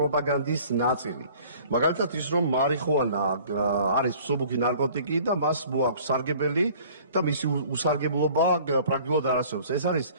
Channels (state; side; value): inverted; both; correlation -0.51